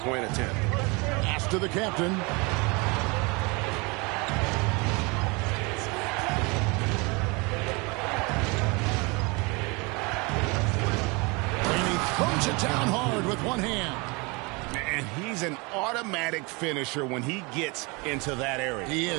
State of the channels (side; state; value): left; quieter; 28.0 dB